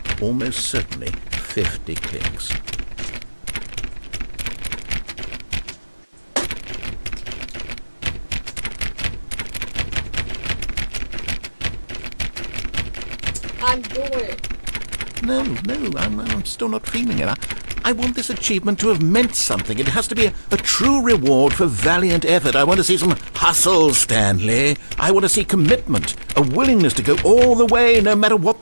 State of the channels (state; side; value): inverted; both; correlation -1.00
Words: almost certainly 50 clicks. I'm doing it. No, I'm still not feeling it. I want this achievement to have meant something. It has to be a true reward for valiant effort. I want to see some hustle, Stanley. I want to see commitment, a willingness to go all the way, no matter what